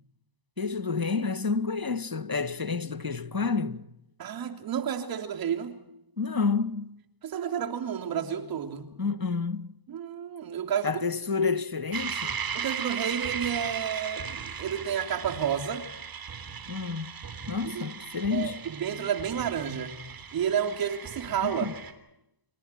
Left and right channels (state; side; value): late; left; 1.0 ms